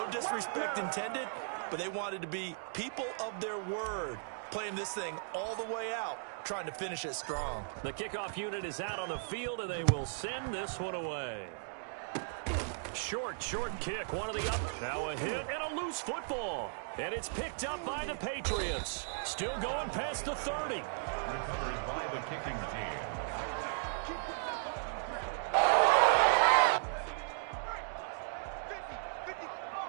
disrespect intended, but they wanted to be people of their word, playing this thing all the way out, trying to finish it strong. The kickoff unit is out on the field, and they will send this one away. Short kick, one of the up. Now a hit and a loose football. And it's picked up by the Patriots. Still going past the 30. Recovered by the kicking team.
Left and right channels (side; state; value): left; silent; digital silence